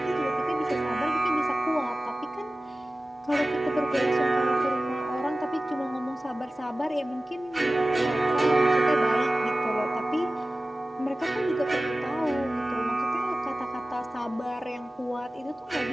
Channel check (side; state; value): both; normal; correlation 0.97